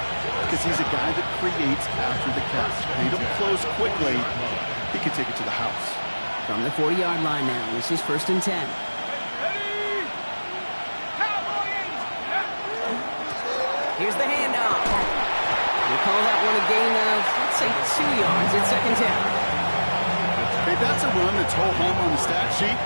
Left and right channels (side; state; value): both; inverted; correlation -1.00